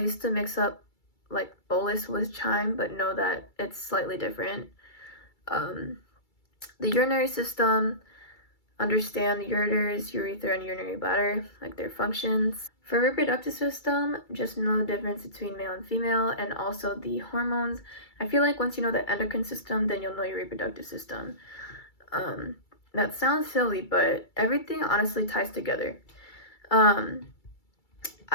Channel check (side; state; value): right; late; 2.3 ms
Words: to mix up like bolus with chyme, but know that it's slightly different. The urinary system, understand the ureters, urethra, and urinary bladder, like their functions. For reproductive system, just know the difference between male and female, and also the hormones. I feel like once you know the endocrine system, then you'll know your reproductive system. That sounds silly, but everything honestly ties together.